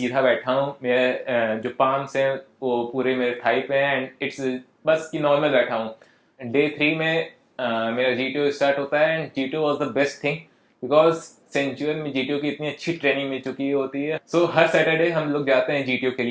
बैठा हूँ, मेरे जो पाम्स हैं वो पूरे मेरे थाई पे हैं एंड इट्स बस कि नॉर्मल बैठा हूँ। डे 3 में मेरा जीटीओ स्टार्ट होता है and GTO was the best thing because सेंचुअल में जीटीओ की इतनी अच्छी ट्रेनिंग मिल चुकी होती है। सो हर सैटरडे हम लोग जाते हैं जीटीओ के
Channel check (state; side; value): identical; both; correlation 1.00